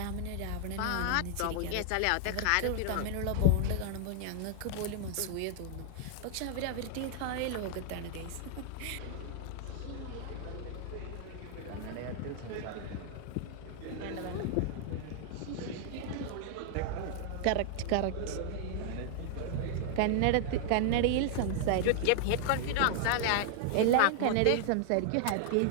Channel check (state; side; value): different; both; correlation 0.00